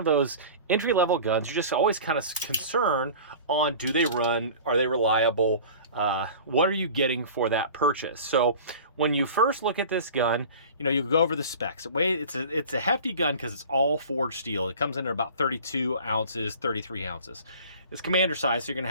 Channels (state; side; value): inverted; both; correlation -0.40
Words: those entry-level guns, you're just always kind of concerned on, do they run? Are they reliable? What are you getting for that purchase? So when you first look at this gun, you know, you go over the specs. It's a hefty gun because it's all forged steel. It comes in at about 32 ounces, 33 ounces. It's commander size, so you're going to